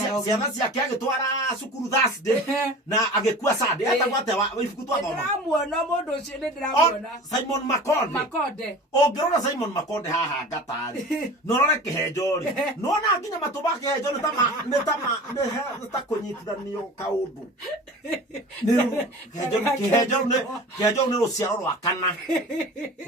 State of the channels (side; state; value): both; normal; correlation 0.38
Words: ciana ciake agĩtwara cukuru Thursday na agĩkua Sunday etagwo atĩa ibuku twathoma. Ndĩramuona mũndũ ũcio nĩ ndĩramuona Simon Makonde. Ũngĩrora Simon Makonde haha ngatarĩ no rore kĩhenjo rĩ no na nginya matũ ma kĩhenjo nĩ ta kũnyitithanio kaũndũ. Kĩhenjo nĩ rũciaro rwa kana